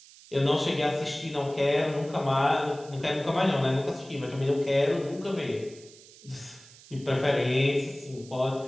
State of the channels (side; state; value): right; noise; hiss, 22 dB below the sound